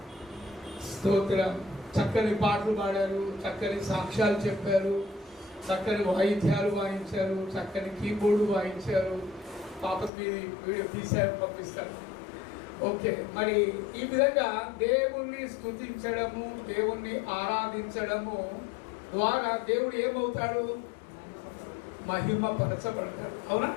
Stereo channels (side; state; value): right; drops out; at 10.1 s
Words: స్తోత్రం. చక్కని పాటలు పాడారు, చక్కని సాక్ష్యాలు చెప్పారు, చక్కని వాయిద్యాలు వాయించారు, చక్కని కీబోర్డు వాయించారు. పాపకి వీడియో తీసారు, పంపిస్తారు. ఓకే, మరి ఈ విధంగా దేవుణ్ణి స్తుతించడము, దేవుణ్ణి ఆరాధించడము ద్వారా దేవుడు ఏమవుతాడు? మహిమపరచబడతాడు. అవునా?